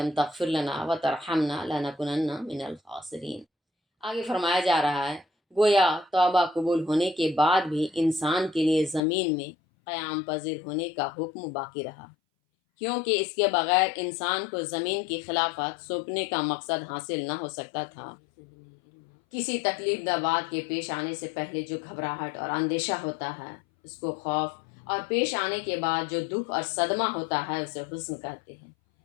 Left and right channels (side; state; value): right; drops out; at 9.0 s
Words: تغفر لنا وترحمنا لنکونن من الخاسرین۔ آگے فرمایا جا رہا ہے گویا توبہ قبول ہونے کے بعد بھی انسان کے لیے زمین میں قیام پذیر ہونے کا حکم باقی رہا، کیونکہ اس کے بغیر انسان کو زمین کی خلافت سونپنے کا مقصد حاصل نہ ہو سکتا تھا۔ کسی تکلیف دہ بات کے پیش آنے سے پہلے جو گھبراہٹ اور اندیشہ ہوتا ہے اس کو خوف، اور پیش آنے کے بعد جو دکھ اور صدمہ ہوتا ہے اسے حزن کہتے ہیں۔